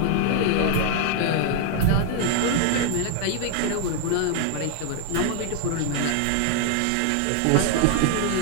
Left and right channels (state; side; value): different; both; correlation 0.00